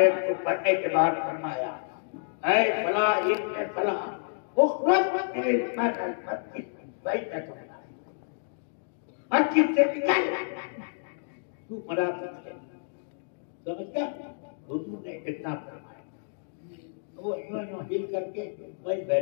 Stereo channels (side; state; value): right; silent; digital silence